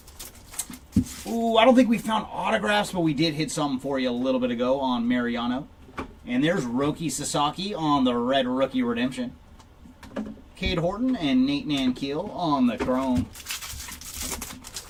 Ooh, I don't think we found autographs, but we did hit something for you a little bit ago on Mariano. And there's Roki Sasaki on the Red Rookie Redemption. Cade Horton and Nate Nankeel on the Chrome.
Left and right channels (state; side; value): identical; both; correlation 1.00